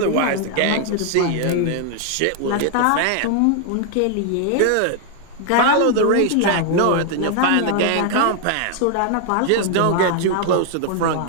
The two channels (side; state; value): both; different; correlation 0.00